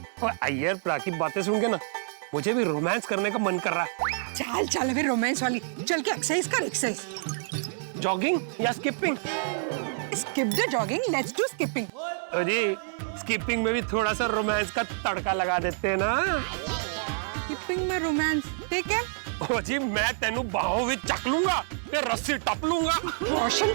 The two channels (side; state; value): left; silent; digital silence